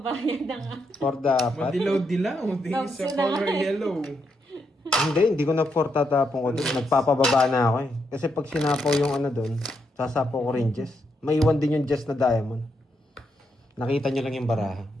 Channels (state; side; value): normal; both; correlation 0.80